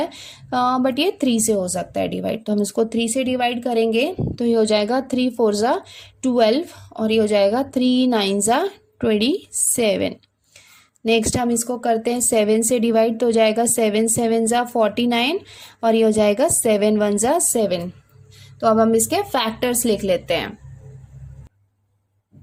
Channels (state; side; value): identical; both; correlation 1.00